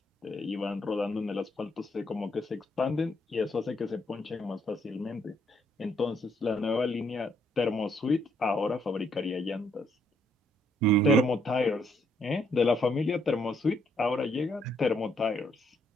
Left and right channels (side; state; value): both; normal; correlation 0.71